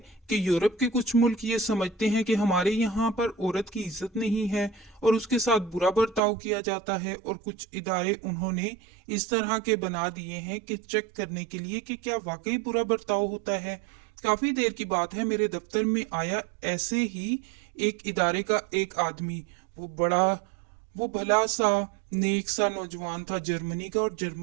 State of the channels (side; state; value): left; drops out; at 6.2 s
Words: कि यूरोप के कुछ मुल्क ये समझते हैं कि हमारे यहाँ पर औरत की इज्जत नहीं है और उसके साथ बुरा बर्ताव किया जाता है, और कुछ इदारे उन्होंने इस तरह के बना दिए हैं कि चेक करने के लिए कि क्या वाकई बुरा बर्ताव होता है। काफी देर की बात है, मेरे दफ्तर में आया ऐसे ही एक इदारे का एक आदमी। वो भला सा नेक सा नौजवान था, जर्मनी का। और